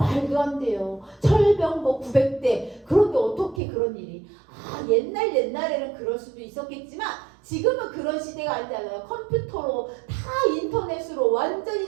안 돼요. 철병 뭐 900대. 그런데 어떻게 그런 일이? 아, 옛날에는 그럴 수도 있었겠지만 지금은 그런 시대가 아니잖아요. 컴퓨터로 다 인터넷으로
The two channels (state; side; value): drops out; left; at 3.6 s